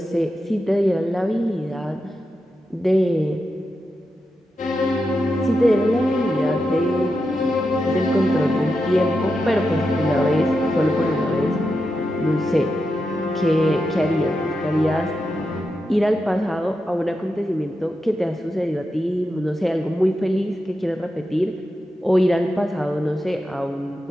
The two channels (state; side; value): normal; both; correlation 0.88